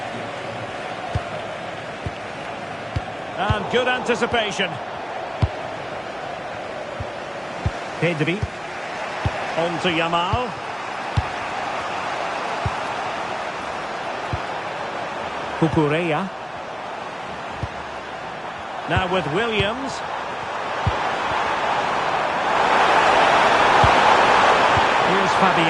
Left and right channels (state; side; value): identical; both; correlation 1.00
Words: And good anticipation. Pedri. On to Yamal. Cucurella. Now with Williams. Here's